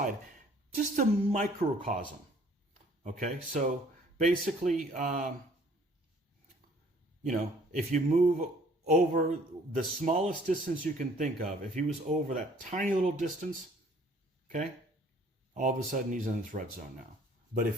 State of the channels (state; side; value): normal; both; correlation 0.57